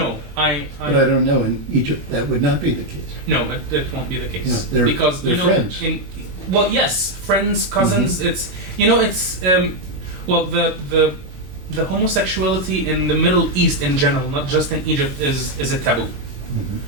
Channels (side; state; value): left; late; 21 ms